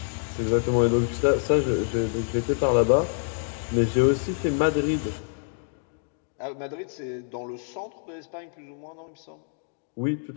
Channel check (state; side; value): silent; right; digital silence